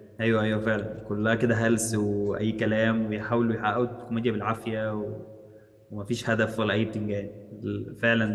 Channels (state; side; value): identical; both; correlation 1.00